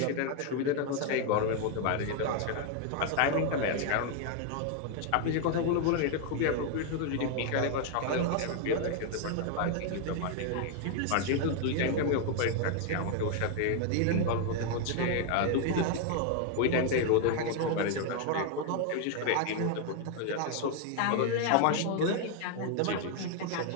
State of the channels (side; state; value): both; different; correlation 0.01